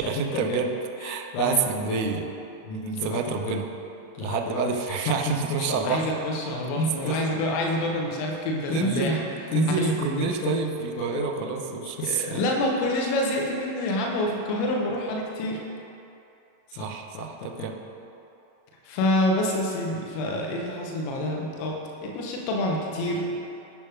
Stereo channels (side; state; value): right; late; 38 ms